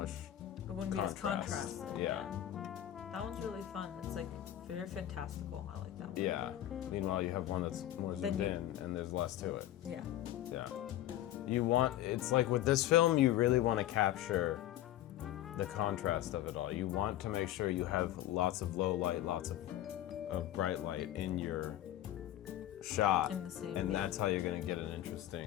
be as Contrast. contrasted. Yeah. That one's really fun. It's like very fantastical. I like that one. Yeah. Meanwhile, you have one that's more Then zoomed you- in, and there's less to it. Yeah. Yeah. It's like with this film, you really want to capture the contrast of it all. You want to make sure you have lots of low light, lots of bright light in your shot. In the same, and yeah. that's how you're going to get an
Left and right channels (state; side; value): quieter; right; 13.1 dB